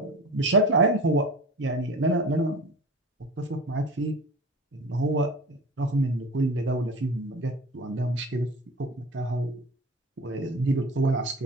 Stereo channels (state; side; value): normal; both; correlation 0.35